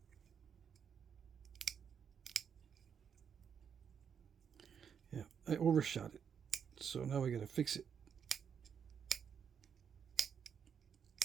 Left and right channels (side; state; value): left; quieter; 7.5 dB